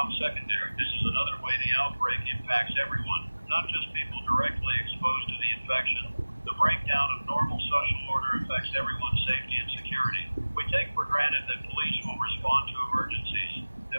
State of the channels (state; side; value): inverted; both; correlation -1.00